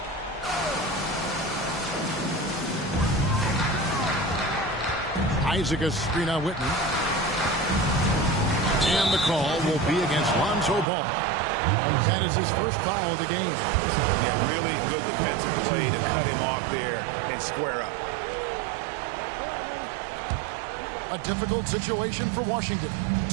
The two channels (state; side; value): drops out; left; at 10.9 s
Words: Isaac a screen on Whitney. And the call will be against Lonzo Ball. That is his first foul of the game. Yeah, really good defensive play to cut him off there and square up. A difficult situation for Washington.